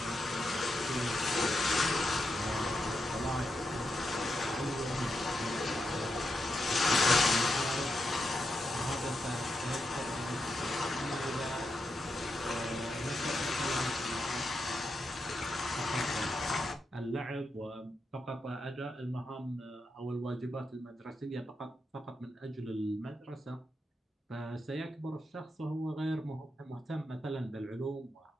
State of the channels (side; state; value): both; normal; correlation 0.85